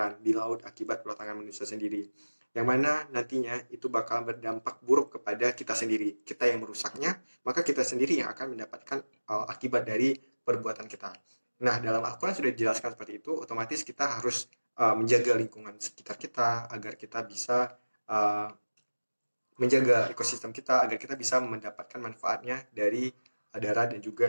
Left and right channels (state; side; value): inverted; both; correlation -1.00